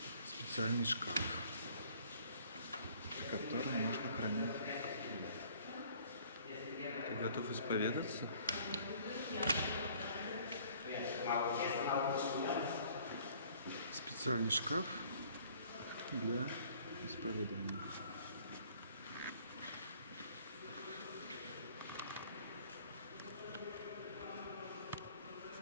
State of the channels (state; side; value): inverted; both; correlation -0.56